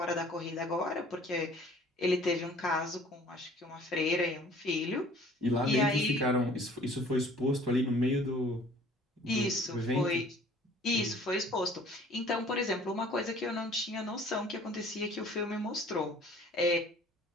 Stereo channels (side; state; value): both; normal; correlation 0.52